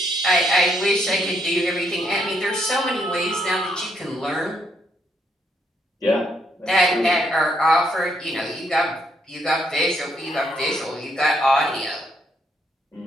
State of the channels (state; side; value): normal; both; correlation 0.74